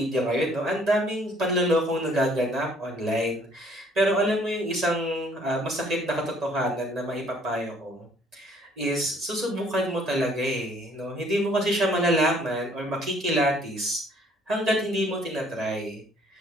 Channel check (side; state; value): both; normal; correlation 0.60